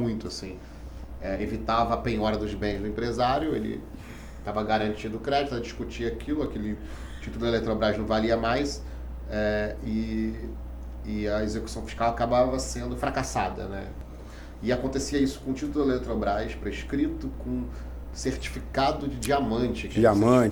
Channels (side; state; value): both; identical; correlation 1.00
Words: assim. Evitava a penhora dos bens do empresário, ele estava garantido o crédito, discutia aquele título da Eletrobras não valia mais, e a execução fiscal acabava sendo fracassada, né? E acontecia isso com o título da Eletrobras prescrito com certificado de diamante.